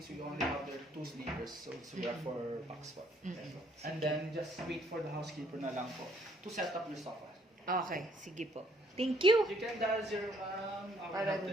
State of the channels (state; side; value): normal; both; correlation 0.64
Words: we only have there 2 sleepers, so we are 4 packs po. And then, just wait for the housekeeper na lang po to set up your sofa. Okay, sige po. Thank you. You can dial 0 our Para help dun